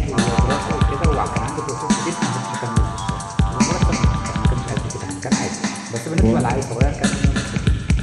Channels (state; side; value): identical; both; correlation 1.00